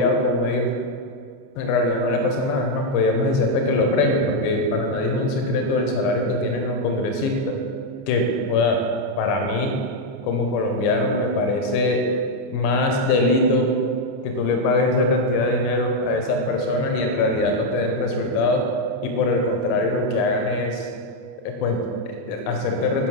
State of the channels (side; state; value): right; late; 29 ms